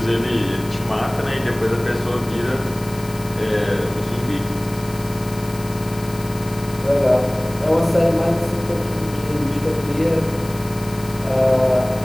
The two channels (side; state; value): left; noise; hiss, 18 dB below the sound